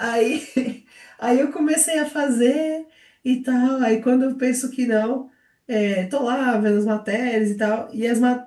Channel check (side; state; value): both; identical; correlation 1.00